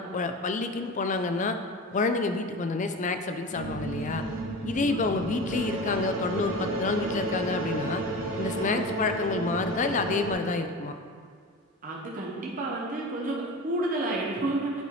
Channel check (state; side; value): normal; both; correlation 0.31